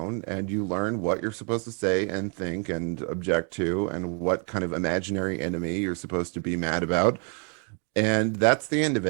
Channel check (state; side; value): quieter; left; 38.8 dB